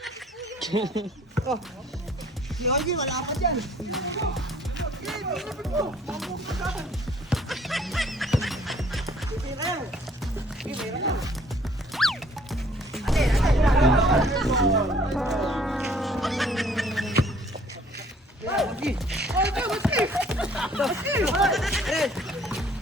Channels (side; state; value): both; normal; correlation 0.57